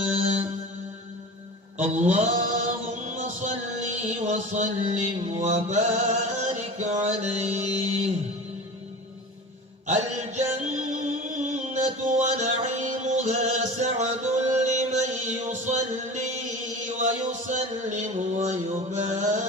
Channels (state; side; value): normal; both; correlation 0.34